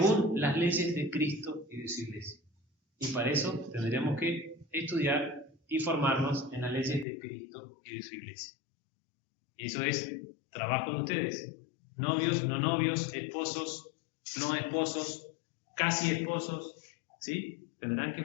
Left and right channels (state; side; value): drops out; right; at 7.1 s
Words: las leyes de Cristo y de su iglesia. Y para eso tendríamos que estudiar y formarnos en las leyes de Cristo y de su iglesia. Y eso es trabajo de ustedes. Novios, no novios, esposos, no esposos, casi esposos, ¿sí? Tendrán que